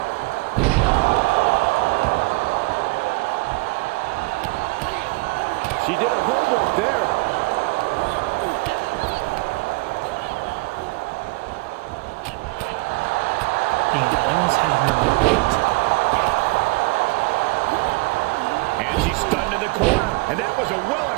She did her homework there. Damn, I almost had her beat. And she's stunned in the corner. And that was a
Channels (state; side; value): quieter; left; 26.4 dB